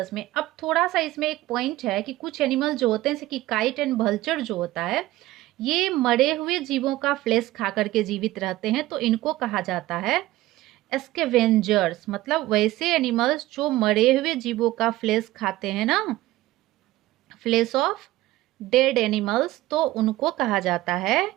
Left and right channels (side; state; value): left; quieter; 16.9 dB